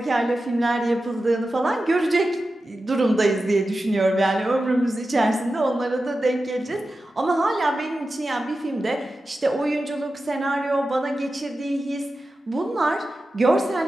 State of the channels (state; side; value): normal; both; correlation 0.92